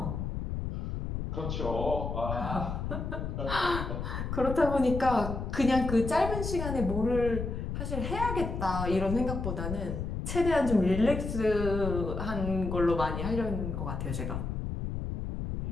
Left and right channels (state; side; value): noise; left; rumble, 4 dB below the sound